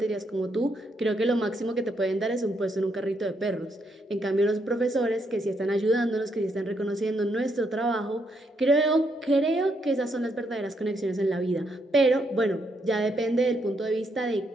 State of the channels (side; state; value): both; normal; correlation 0.76